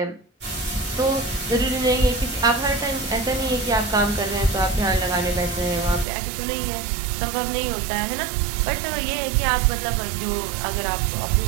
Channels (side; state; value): left; drops out; at 6.1 s